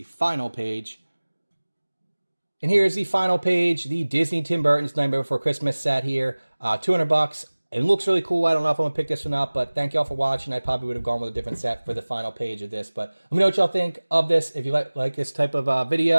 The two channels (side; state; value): both; inverted; correlation -1.00